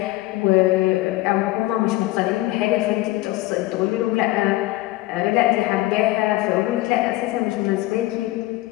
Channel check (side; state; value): right; quieter; 18.1 dB